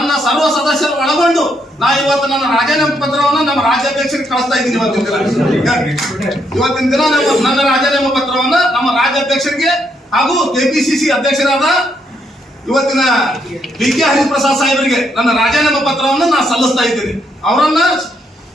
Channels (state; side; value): normal; both; correlation 0.75